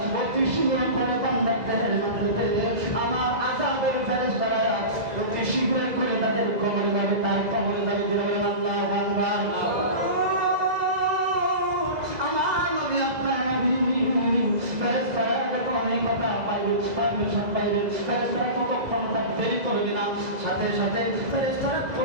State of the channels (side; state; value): left; late; 2.0 ms